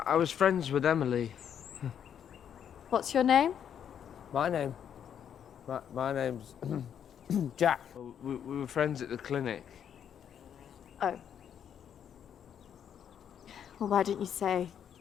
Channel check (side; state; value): right; quieter; 8.7 dB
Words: friends with Emily. What's your name? My name's Jack. We were friends at the clinic. Oh. Well, why didn't you say?